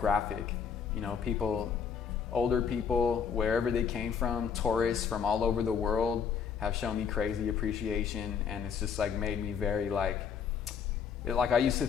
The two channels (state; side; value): quieter; right; 6.9 dB